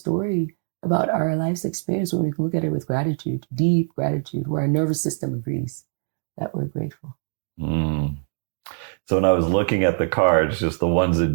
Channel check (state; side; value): silent; left; digital silence